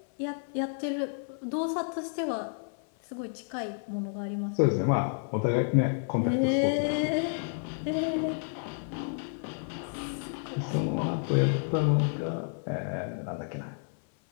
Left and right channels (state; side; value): silent; right; 58 dB below the other